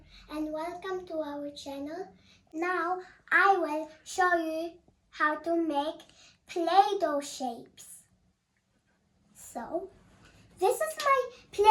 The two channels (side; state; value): both; identical; correlation 1.00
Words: and welcome to our channel. Now I will show you how to make Play-Doh shapes. So this is my